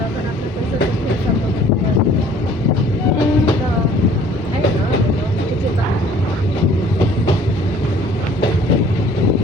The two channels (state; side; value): normal; both; correlation 0.54